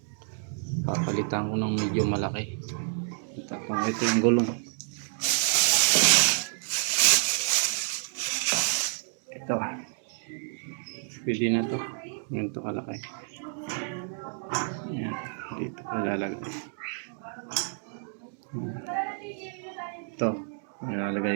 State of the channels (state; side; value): silent; left; 59 dB below the other